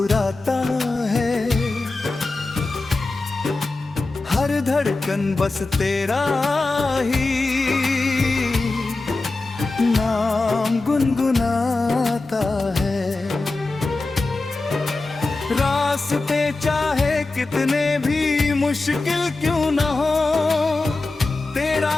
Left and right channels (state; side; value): quieter; right; 3.3 dB